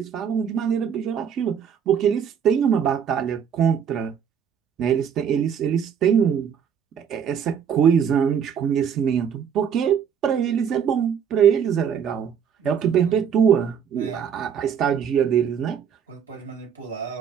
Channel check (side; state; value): left; quieter; 7.8 dB